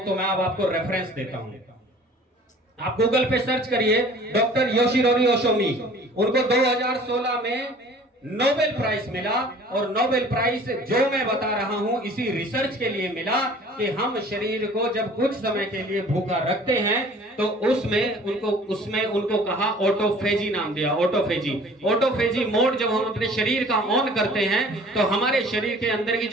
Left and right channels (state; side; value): normal; both; correlation 0.49